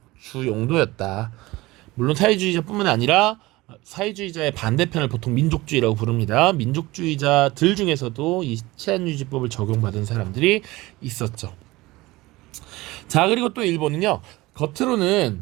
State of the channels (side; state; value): left; quieter; 20.1 dB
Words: 주 용도였다. 물론 사회주의자뿐만 아니라 사회주의자의 반대편을 보통 민족주의라고 부릅니다. 민족주의자들 중에서도 이 치안유지법을 적용받은 사람들이 있었죠. 자, 그리고 또 일본은요,